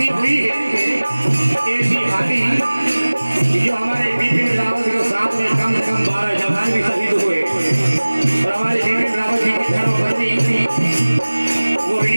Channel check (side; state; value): both; inverted; correlation -1.00